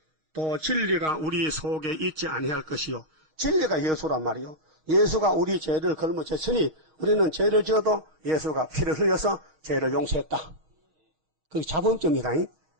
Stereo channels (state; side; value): late; left; 6.4 ms